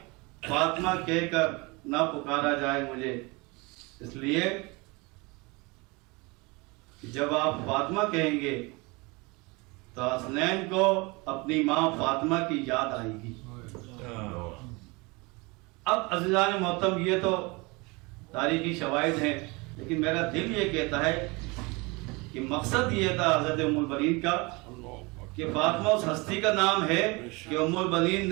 فاطمہ کہہ کر نہ پکارا جائے مجھے، اس لیے جب آپ فاطمہ کہیں گے تو حسنین کو اپنی ماں فاطمہ کی یاد آئے گی۔ اب عزیزان محترم، یہ تو تاریخی شواہد ہیں، لیکن میرا دل یہ کہتا ہے کہ مقصد یہ تھا حضرت ام البنین کا کہ فاطمہ اس ہستی کا نام ہے کہ ام البنین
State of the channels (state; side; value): quieter; left; 26.3 dB